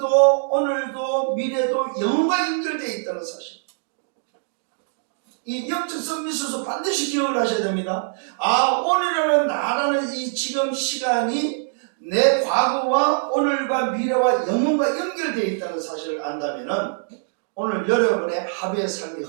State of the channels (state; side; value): silent; left; digital silence